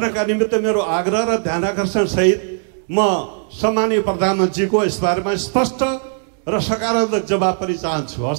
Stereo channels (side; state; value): left; silent; digital silence